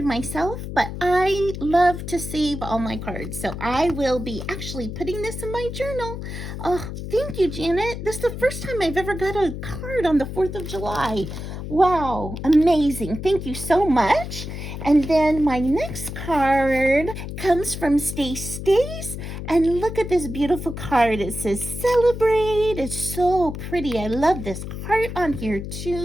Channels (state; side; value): noise; left; hum, 7 dB below the sound